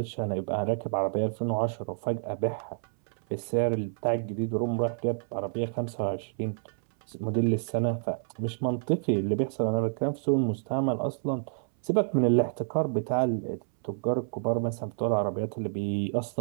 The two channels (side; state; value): left; silent; 59 dB below the other